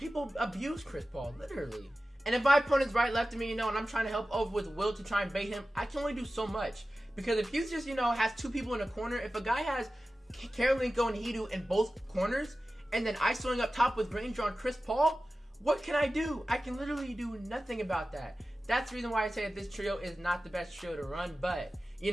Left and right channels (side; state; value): both; normal; correlation 0.95